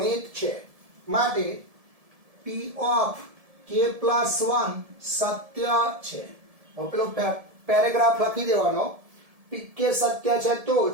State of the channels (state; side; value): late; left; 1.7 ms